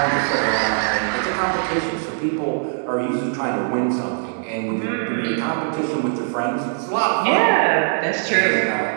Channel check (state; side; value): silent; left; digital silence